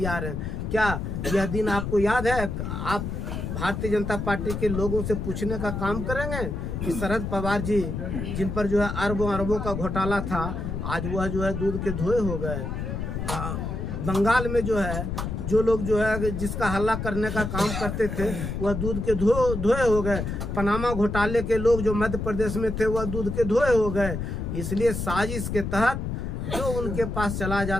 हैं। क्या यह दिन आपको याद है? आप भारतीय जनता पार्टी के लोगों से पूछने का काम करेंगे कि शरद पवार जी जिन पर जो है अरबों अरबों का घोटाला था, आज वह जो है दूध के धोए हो गए। बंगाल में जो है जो लोग जो है जिसका हल्ला करने का काम करते थे वह दूध के धोए हो गए। पनामा घोटाले के लोग जो मध्य प्रदेश में थे वह दूध के धोए हो गए। इसलिए साजिश के तहत जो उनके पास चला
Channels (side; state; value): left; noise; rumble, 4 dB below the sound